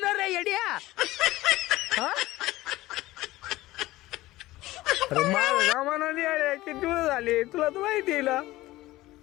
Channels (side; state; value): right; quieter; 17.6 dB